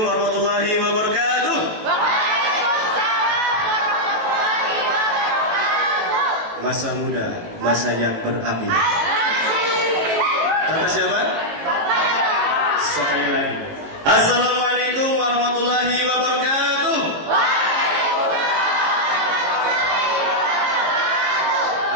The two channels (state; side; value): late; left; 19 ms